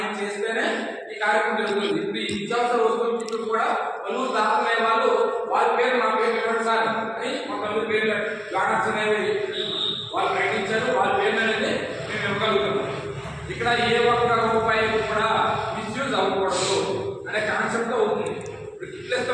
చేస్తేనే ఈ కార్యక్రమం జరుగుతుంది. ఇప్పుడు ఈ నిత్యావసర వస్తువులు కూడా పలువురు దాతలే వాళ్ళు వాళ్ళ పేరు నా పేరు ఇవ్వండి సార్ అని మా పలువురు పేర్లు బ్యానర్స్ అనేవి వాళ్ళు ప్రకటించారు. వాళ్ళ పేర్లు అనేది మేము ఇవ్వగలుగుతున్నాం. ఇక్కడ ఏ ఒక్క రూపాయి కూడా మిస్యూజ్ అవ్వకూడదు అనే కాన్సెప్ట్ అవుతుంది. ఇప్పుడు గిఫ్ట్లు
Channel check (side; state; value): both; identical; correlation 1.00